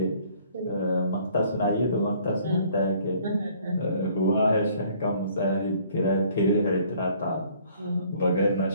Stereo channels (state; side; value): inverted; both; correlation -0.59